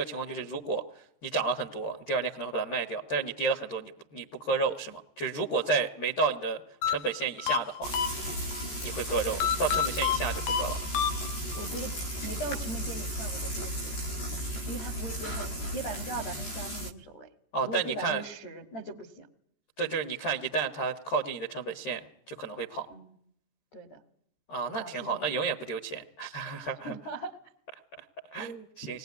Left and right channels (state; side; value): late; right; 14 ms